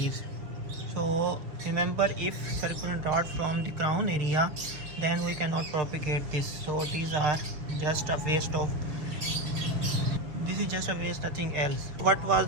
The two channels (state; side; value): late; left; 6.3 ms